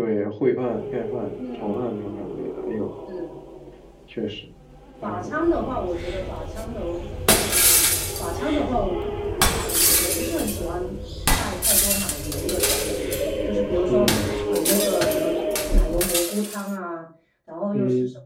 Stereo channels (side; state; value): both; identical; correlation 1.00